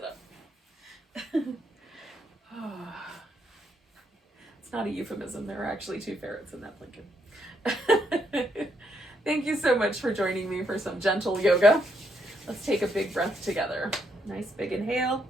up. It's not a euphemism. There are actually 2 ferrets in that blanket. Thank you so much for joining me for some gentle yoga. Let's take a big breath together. Nice big inhale.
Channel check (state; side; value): normal; both; correlation 0.76